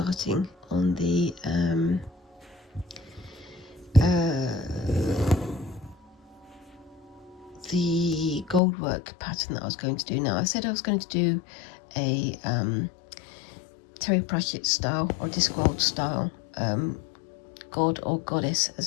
on the gold work pattern that I was going to do. Now, I said I was going to do a Terry Pratchett style or Discworld style god or goddess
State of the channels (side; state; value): right; drops out; at 8.6 s